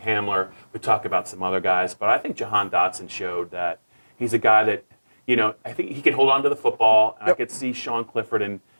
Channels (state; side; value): inverted; both; correlation -1.00